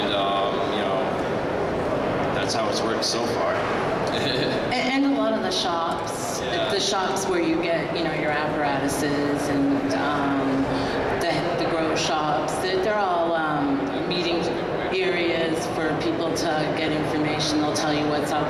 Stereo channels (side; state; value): both; identical; correlation 1.00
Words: that's how it's worked so far. And a lot of the shops, Yeah. the shops where you get, your apparatuses and the grow shops, they're all meeting areas for people to get information. They'll tell you what's